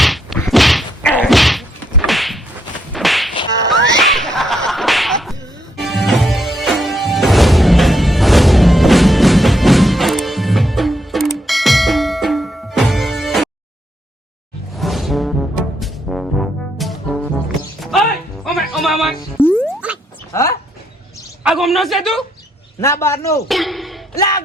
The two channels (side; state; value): both; normal; correlation 0.76